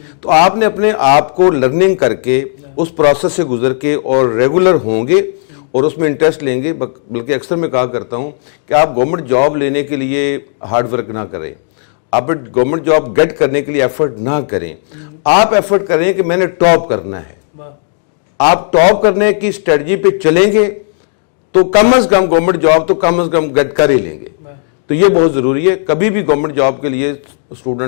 तो आपने अपने आप को लर्निंग करके उस प्रोसेस से गुजर के और रेगुलर होंगे और उसमें इंटरेस्ट लेंगे। बल्कि अक्सर मैं कहा करता हूं कि आप गवर्नमेंट जॉब लेने के लिए हार्ड वर्क ना करें, आप गवर्नमेंट जॉब गेट करने के लिए एफर्ट ना करें, आप एफर्ट करें कि मैंने टॉप करना है। आप टॉप करने की स्ट्रेटजी पे चलेंगे तो कम से कम गवर्नमेंट जॉब तो कम से कम गेट कर ही लेंगे। तो ये बहुत जरूरी है। कभी भी गवर्नमेंट जॉब के लिए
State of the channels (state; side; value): silent; right; digital silence